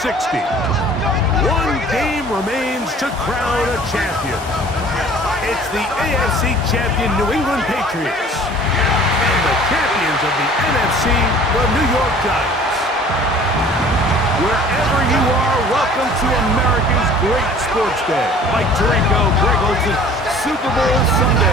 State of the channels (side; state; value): both; normal; correlation 0.49